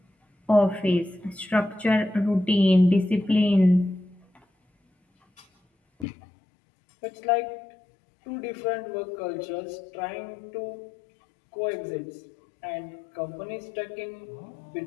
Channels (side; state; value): right; drops out; at 6.1 s